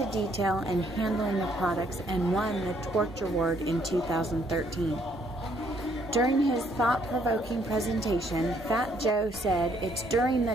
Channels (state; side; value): normal; both; correlation 0.68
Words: detail and handling the products and won the Torch Award in 2013. During his thought-provoking presentation, Fat Joe said, "It's during the